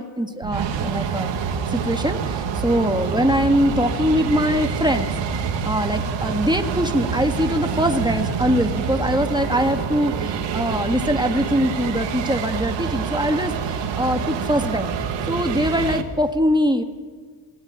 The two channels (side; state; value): both; normal; correlation 0.57